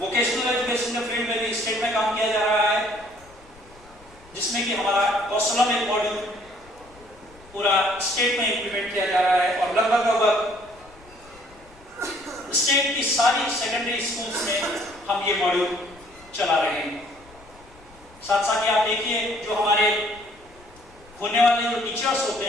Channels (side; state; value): left; noise; rumble, 25 dB below the sound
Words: वोकेशनल एजुकेशन के फील्ड में भी स्टेट में काम किया जा रहा है, जिसमें कि हमारा कौशलम एक मॉड्यूल पूरा स्टेट में इंप्लीमेंट किया जा रहा है और लगभग स्टेट की सारी सेकेंडरी स्कूल्स में हम ये मॉड्यूल चला रहे हैं। साथ साथ आप देखिए जो हमारे होने वाले जो टीचर्स होते